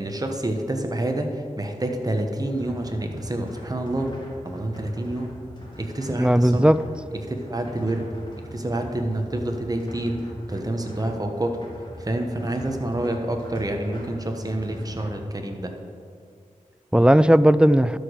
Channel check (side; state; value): both; normal; correlation 0.94